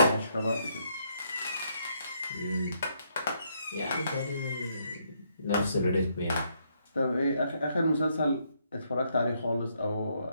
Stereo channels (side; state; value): both; inverted; correlation -0.74